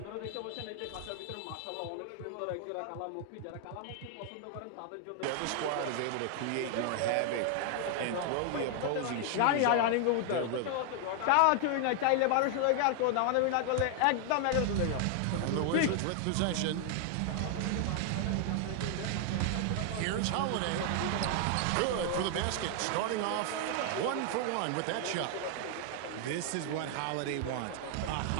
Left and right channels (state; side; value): different; both; correlation 0.00